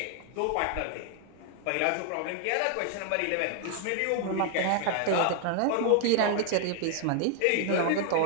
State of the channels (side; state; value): both; different; correlation 0.00